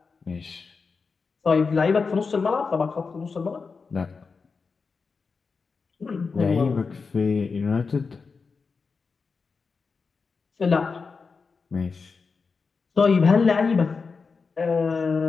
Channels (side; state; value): right; quieter; 4.8 dB